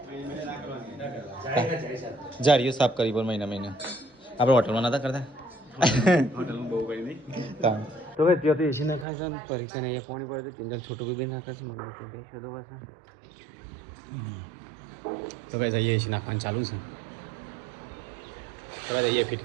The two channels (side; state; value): left; drops out; at 9.1 s